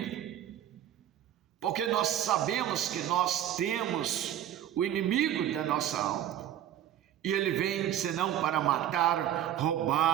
porque nós sabemos que nós temos o inimigo da nossa alma, E ele vem senão para matar,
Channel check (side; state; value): left; quieter; 11.3 dB